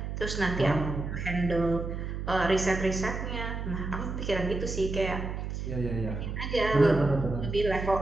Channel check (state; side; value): noise; right; hum, 5 dB below the sound